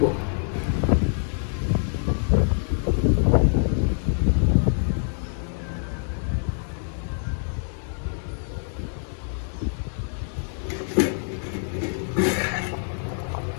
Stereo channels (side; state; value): right; silent; 61 dB below the other